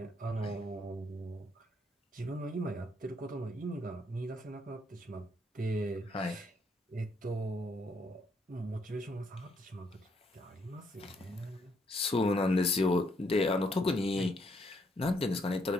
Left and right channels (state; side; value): normal; both; correlation 0.72